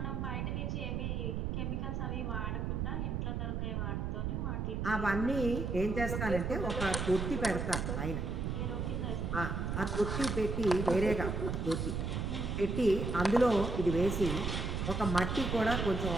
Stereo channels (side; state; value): right; noise; rumble, 1 dB below the sound